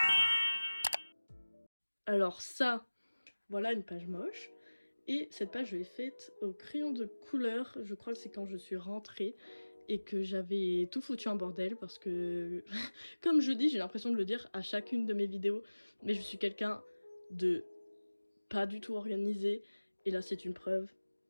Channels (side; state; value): both; inverted; correlation -1.00